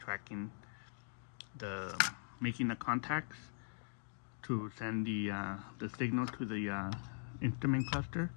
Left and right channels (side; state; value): right; silent; digital silence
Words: the making the contacts to send the signal to the instrument cluster.